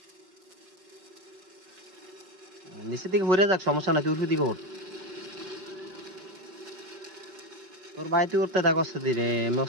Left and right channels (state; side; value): late; left; 5.3 ms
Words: নিচের দিকে ঘুরে যাক সমস্যা নাই তুই উঠে দিকে ওঠ তোর ভাই তুই উঠতে থাক অস্তে ধীরে